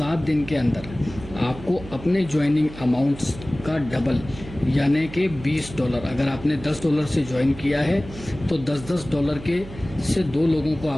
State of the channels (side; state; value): right; noise; hum, 14 dB below the sound